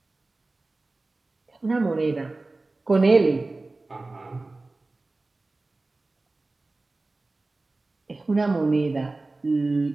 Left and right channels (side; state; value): left; quieter; 3.2 dB